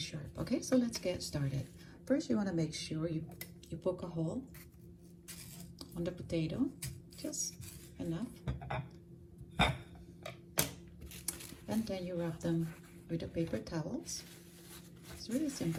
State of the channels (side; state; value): both; identical; correlation 1.00